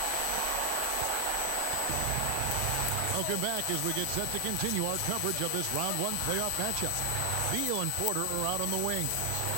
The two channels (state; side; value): different; both; correlation 0.00